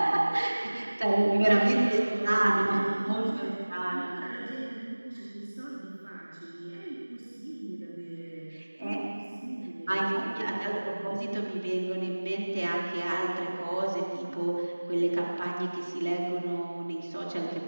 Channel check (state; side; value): inverted; both; correlation -1.00